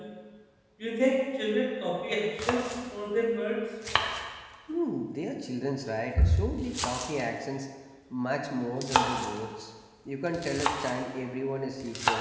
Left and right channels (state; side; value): identical; both; correlation 1.00